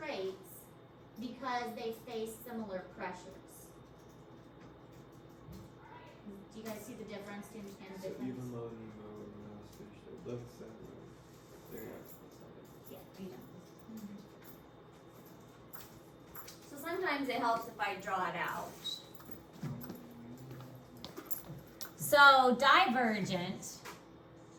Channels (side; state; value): both; identical; correlation 1.00